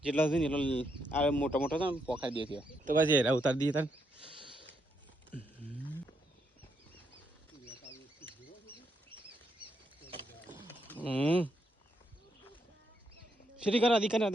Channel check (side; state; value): both; normal; correlation 0.78